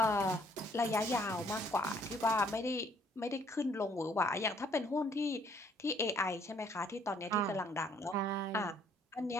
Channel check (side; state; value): both; normal; correlation 0.63